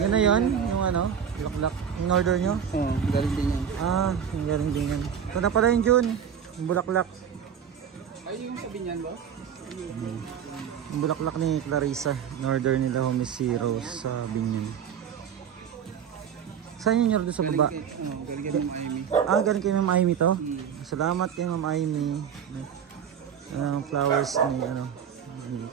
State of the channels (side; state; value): left; quieter; 8.0 dB